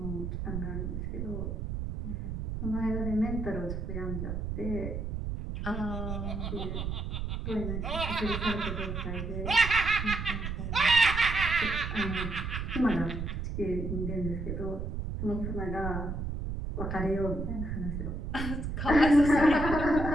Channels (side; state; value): right; noise; rumble, 4 dB below the sound